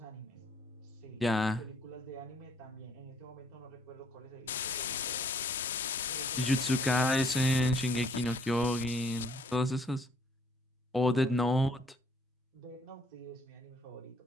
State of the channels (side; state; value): both; normal; correlation 0.63